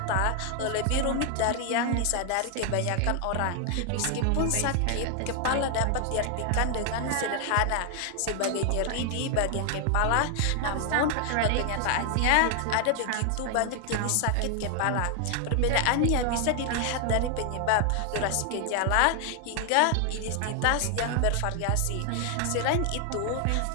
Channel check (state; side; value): different; both; correlation 0.00